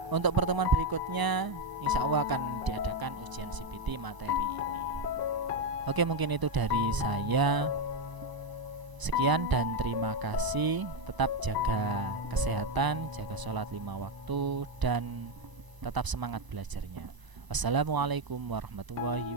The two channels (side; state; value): left; late; 1.0 ms